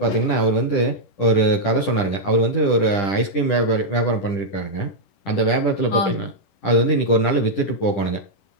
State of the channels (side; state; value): right; late; 10 ms